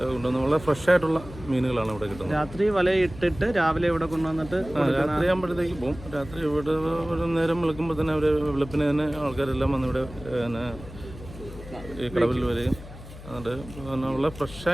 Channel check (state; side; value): noise; left; hum, 15 dB below the sound